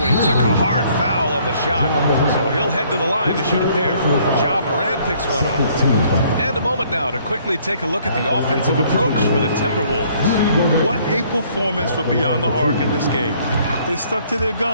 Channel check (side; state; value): both; inverted; correlation -0.62